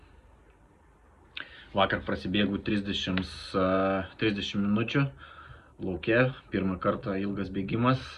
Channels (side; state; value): both; identical; correlation 1.00